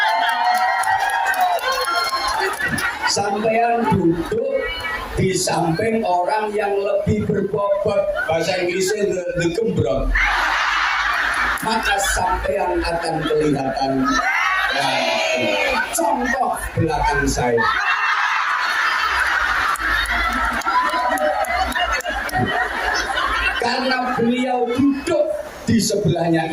Sampean duduk di samping orang yang lebih berbobot, bahasa Inggrisnya the gembrong, maka sampean akan kelihatan. Contoh belakang saya, karena beliau duduk di sebelahnya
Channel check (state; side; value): identical; both; correlation 1.00